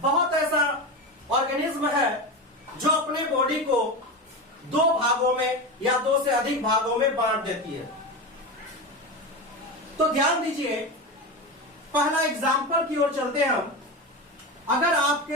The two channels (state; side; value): normal; both; correlation 0.21